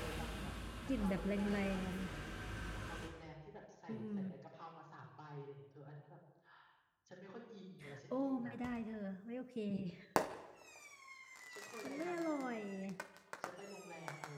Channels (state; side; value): identical; both; correlation 1.00